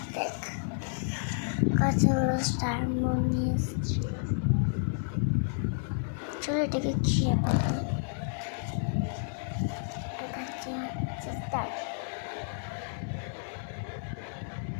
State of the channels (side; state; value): right; silent; digital silence